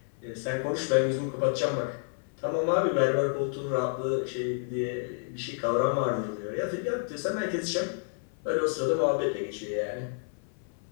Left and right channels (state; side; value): silent; right; 57 dB below the other